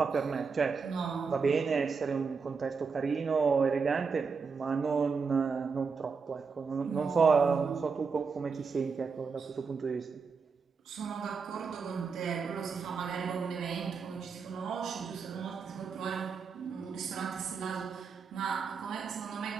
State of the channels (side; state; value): left; quieter; 5.3 dB